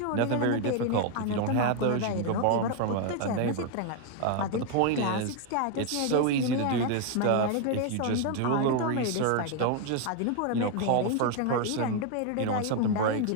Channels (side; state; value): both; different; correlation 0.01